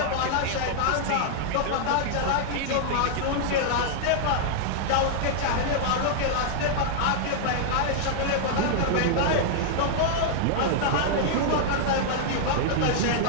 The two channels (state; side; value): different; both; correlation -0.01